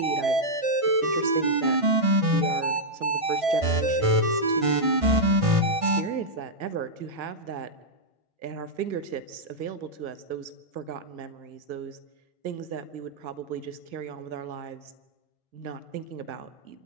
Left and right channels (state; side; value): late; left; 1.5 ms